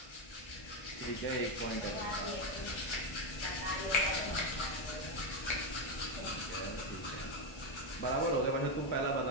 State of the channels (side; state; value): right; late; 1.3 ms